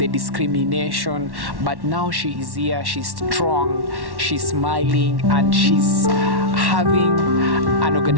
discrimination. But now she is here, she's strong, she's smiling, and she's having an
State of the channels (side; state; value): left; late; 1.1 ms